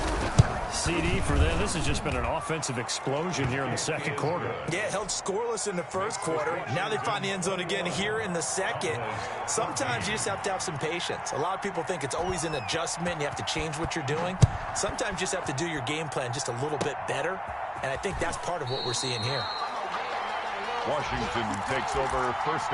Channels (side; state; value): both; identical; correlation 1.00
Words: CD for them. This has just been an offensive explosion here in the 2nd quarter. Yeah, held scoreless in the 1st quarter. Now they find the end zone again here in the 2nd. Sometimes you just have to have some patience. A lot of people think it's always an adjustment. You have to change what you're doing. Sometimes you just have to do your game plan just a little bit better. And I think that's part of what we're seeing here. Washington takes over 1st